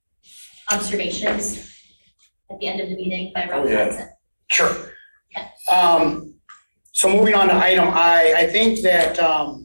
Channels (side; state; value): both; inverted; correlation -1.00